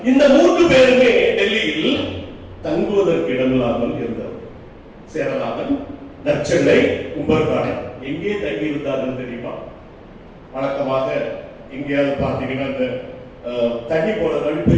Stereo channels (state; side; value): identical; both; correlation 1.00